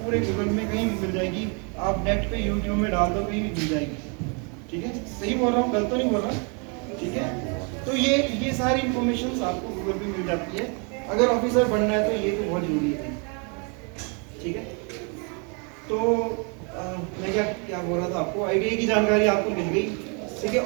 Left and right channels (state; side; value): quieter; left; 35.7 dB